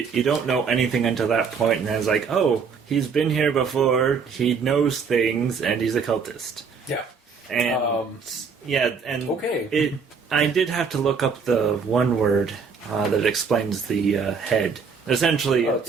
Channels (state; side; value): quieter; left; 5.6 dB